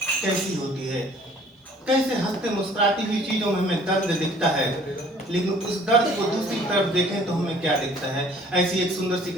कैसी होती है, कैसे हंसते मुस्कुराती हुई चीजों में हमें दर्द दिखता है, लेकिन उस दर्द को दूसरी तरफ देखें तो हमें क्या दिखता है। ऐसी एक सुंदर सी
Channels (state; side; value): normal; both; correlation 0.54